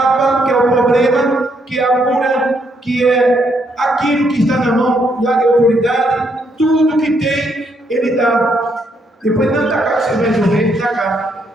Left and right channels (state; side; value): normal; both; correlation 0.74